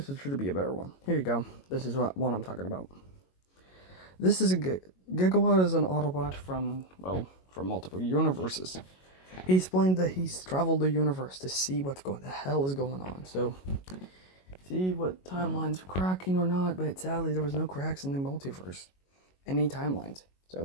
should be a better one. Here you go. This is what one I'm talking about. This is Gigawatt is an Autobot from multiple universes. He explained that he's traveled the universe to see what the hell is going on. So, see what timelines are cracking or not, but sadly there was no cracks in the multiverse. Any timelines.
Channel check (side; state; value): right; late; 22 ms